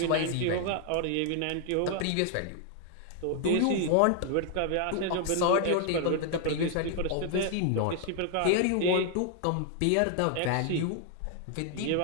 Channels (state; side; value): different; both; correlation 0.00